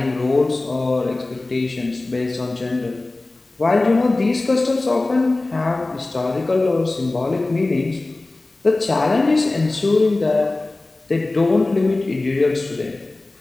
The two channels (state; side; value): quieter; right; 3.0 dB